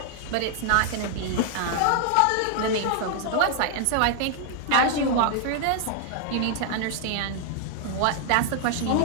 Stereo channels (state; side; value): different; both; correlation 0.00